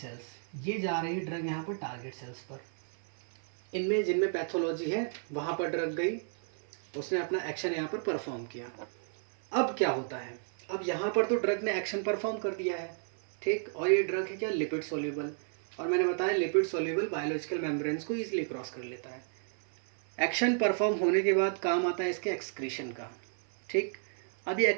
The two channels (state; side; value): silent; left; 56 dB below the other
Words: ये जा रही है ड्रग यहाँ पर टारगेट सेल्स पर। इनमें जिनमें पैथोलॉजी है वहाँ पर ड्रग गई, उसने अपना एक्शन यहाँ पर परफॉर्म किया। अब क्या होता है, अब यहाँ पर तो ड्रग ने एक्शन परफॉर्म कर दिया है, ठीक। और ये ड्रग है क्या? Lipid soluble. और मैंने बताया लिपिड सॉल्युबल बायोलॉजिकल मेम्ब्रेन्स को ईजिली क्रॉस कर लेता है। एक्शन परफॉर्म होने के बाद काम आता है इसके एक्सक्रीशन का, ठीक। अब ये